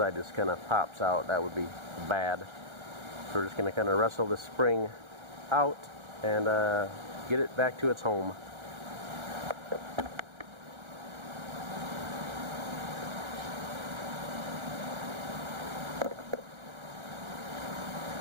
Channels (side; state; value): left; late; 1.4 ms